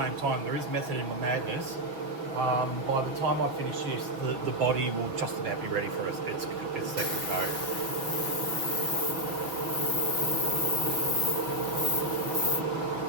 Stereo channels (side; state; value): left; late; 6.0 ms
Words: time, there is method in my madness. By the time I finish this, the body will just about be ready for its second coat.